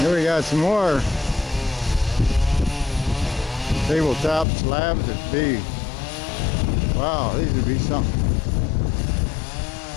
we got some more tabletop slabs that'd be, wow, these would be something.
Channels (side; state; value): right; drops out; at 4.5 s